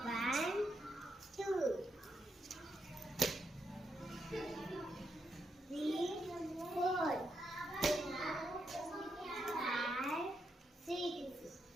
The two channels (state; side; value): normal; both; correlation 0.81